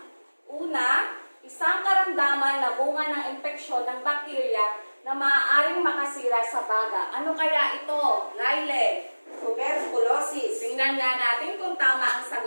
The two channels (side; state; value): both; inverted; correlation -1.00